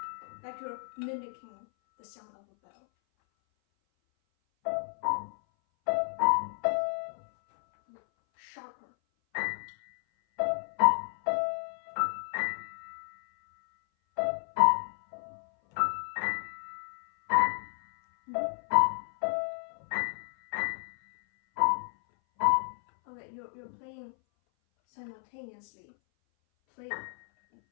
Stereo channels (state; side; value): silent; right; 57 dB below the other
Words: like you're mimicking the sound of a bell. Sharper. Okay, you're playing simultaneously. Play